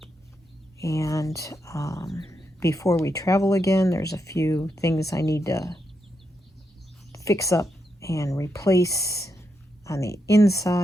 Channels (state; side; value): normal; both; correlation 0.83